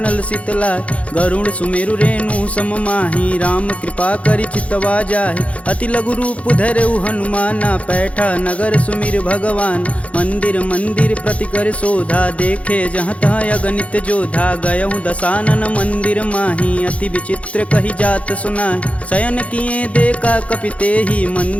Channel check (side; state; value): right; late; 0.064 ms